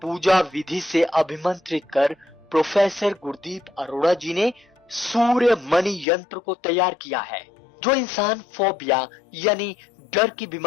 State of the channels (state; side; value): drops out; right; at 6.1 s